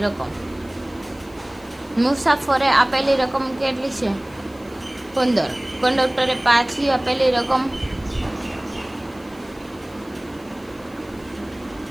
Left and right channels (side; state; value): left; noise; hiss, 27 dB below the sound